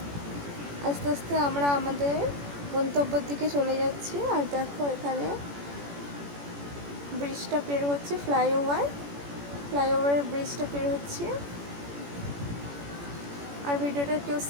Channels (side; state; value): left; late; 18 ms